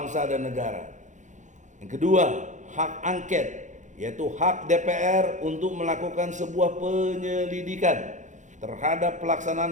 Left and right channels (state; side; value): late; left; 0.35 ms